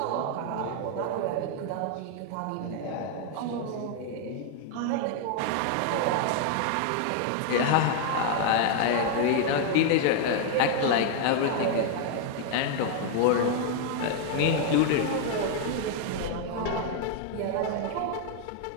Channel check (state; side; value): different; both; correlation 0.00